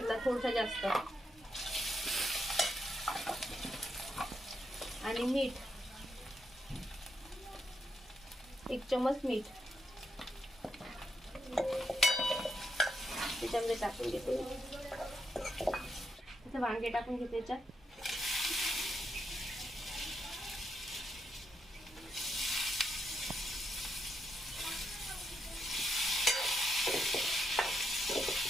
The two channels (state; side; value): normal; both; correlation 0.81